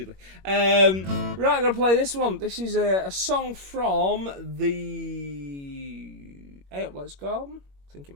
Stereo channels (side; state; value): left; late; 21 ms